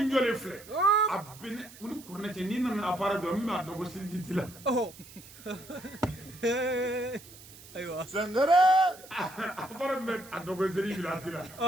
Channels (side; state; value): right; noise; hiss, 19 dB below the sound